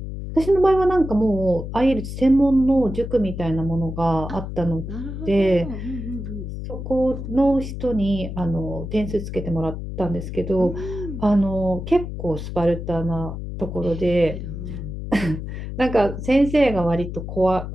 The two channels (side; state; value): left; noise; hum, 7 dB below the sound